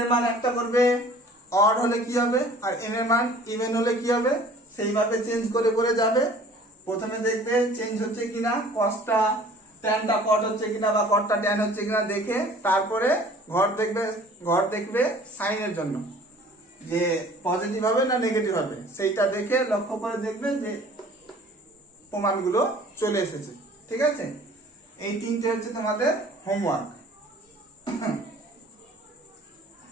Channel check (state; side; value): normal; both; correlation 0.50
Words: মান একটা করবে অড হলে কি হবে, আর n এর মান ইভেন হলে কি হবে, সেইভাবে চেঞ্জ করে করে যাবে। প্রথমে দেখবে চেঞ্জ হচ্ছে কিনা, কসটা ট্যানটা কট হচ্ছে কিনা বা কটটা ট্যান হচ্ছে কিনা দেখে তারপরে ঘর দেখবে সাইনের জন্য যে পজিটিভ হবে না নেগেটিভ হবে, সেইটা দেখে লক্ষ্য করে দেখবে যে প্রমাণগুলো চলে এসেছে, ঠিক আছে। এই তিনটে হচ্ছে তোমাদের হোমওয়ার্ক।